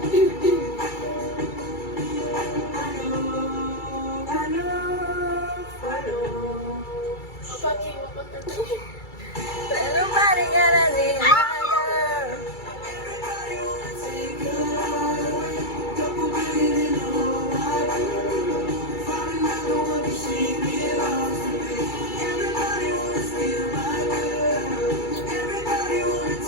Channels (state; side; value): late; right; 2.3 ms